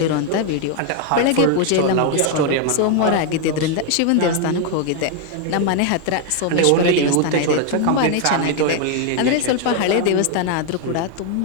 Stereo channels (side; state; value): both; different; correlation 0.01